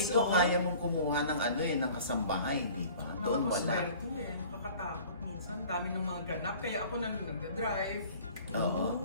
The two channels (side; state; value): both; inverted; correlation -0.47